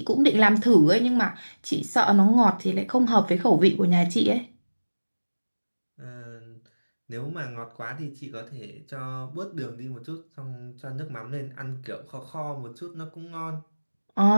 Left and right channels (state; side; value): inverted; both; correlation -1.00